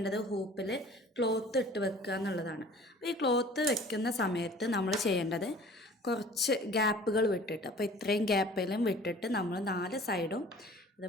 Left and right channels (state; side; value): normal; both; correlation 0.47